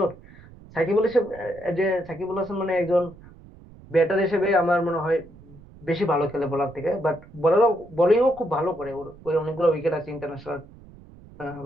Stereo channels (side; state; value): right; noise; rumble, 21 dB below the sound